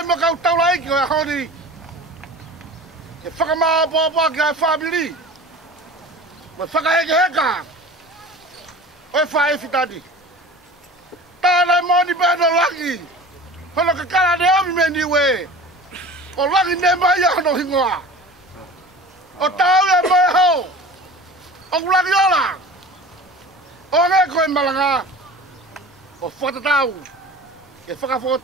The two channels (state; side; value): normal; both; correlation 0.39